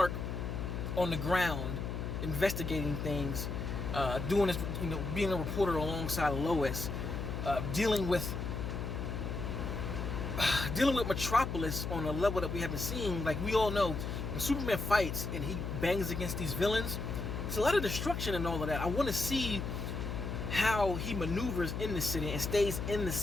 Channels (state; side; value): noise; left; hum, 4 dB below the sound